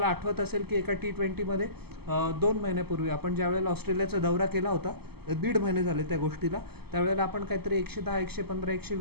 आठवत असेल की एका T20मध्ये 2 महिन्यापूर्वी आपण ज्यावेळेला ऑस्ट्रेलियाचा दौरा केला होता, 1.5 महिने झाले त्या गोष्टीला, त्यावेळेला आपण काहीतरी 110, 115,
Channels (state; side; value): late; left; 0.96 ms